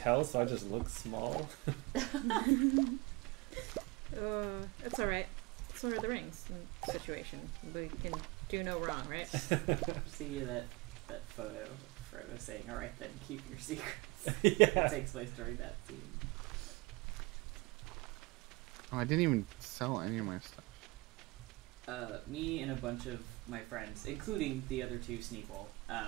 so I just look small. It's alright. It's Lord of the Rings situation. We can do no wrong, right? See that photo of Frodo saying, "All right, then keep your secrets." Yeah. It takes place during that scene. Oh, I didn't even sell any of my stuff. Me and a bunch of my friends, including the other two Sneeple,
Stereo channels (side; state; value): left; quieter; 23.9 dB